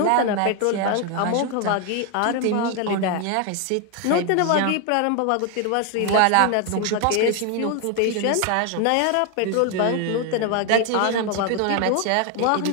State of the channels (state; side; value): different; both; correlation 0.01